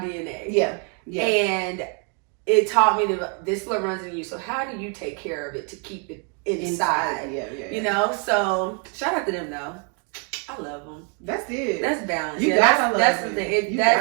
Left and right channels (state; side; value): quieter; left; 37.4 dB